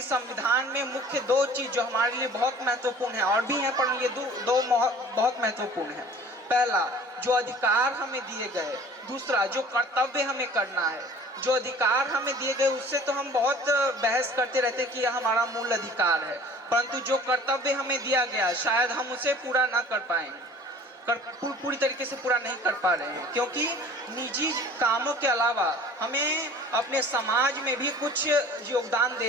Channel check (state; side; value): normal; both; correlation 0.46